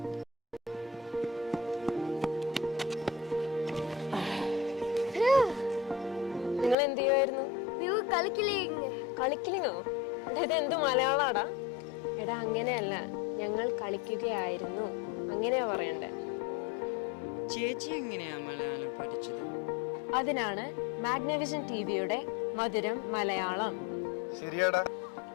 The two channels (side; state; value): right; drops out; at 6.8 s